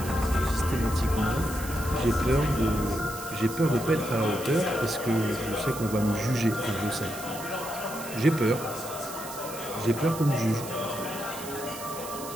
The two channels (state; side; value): noise; right; hiss, 12 dB below the sound